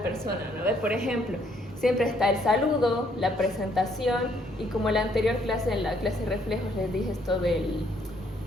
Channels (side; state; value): both; normal; correlation 0.68